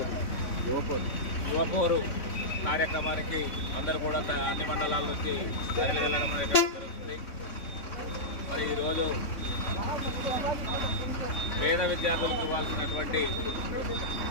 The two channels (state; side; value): late; right; 3.5 ms